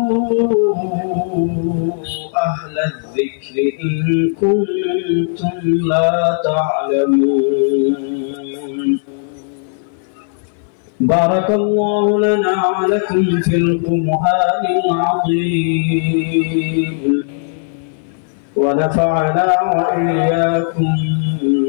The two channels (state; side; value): silent; right; 59 dB below the other